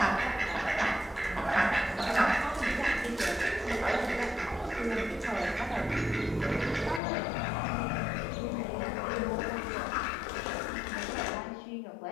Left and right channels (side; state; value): right; drops out; at 7.0 s